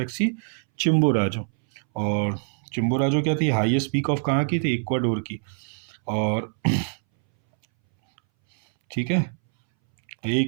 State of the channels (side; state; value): left; silent; 61 dB below the other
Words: Chimborazo. और चिम्बोराजो क्या थी? हाईएस्ट पीक ऑफ कहाँ की थी? इक्वाडोर की। और ठीक है,